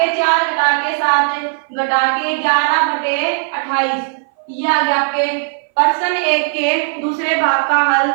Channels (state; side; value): silent; left; 58 dB below the other